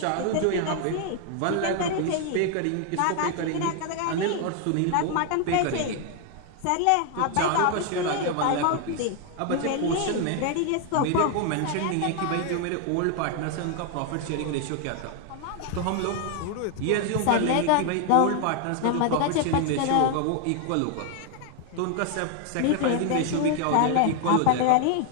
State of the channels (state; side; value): different; both; correlation 0.00